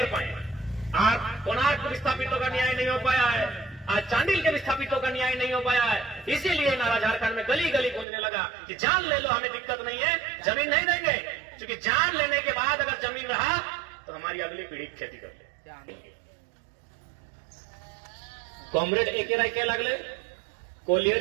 पाए। आज कोणार्क के विस्थापितों का न्याय नहीं हो पाया है, आज चांडिल के विस्थापितों का न्याय नहीं हो पाया है। इसीलिए नारा झारखंड में गली गली गूंजने लगा कि जान ले लो, हमें दिक्कत नहीं है, जमीन नहीं देंगे क्योंकि जान लेने के बाद अगर जमीन रहा तो हमारी अगली पीढ़ी खेती कर ले। कॉमरेड एके लगले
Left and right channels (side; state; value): left; drops out; at 8.1 s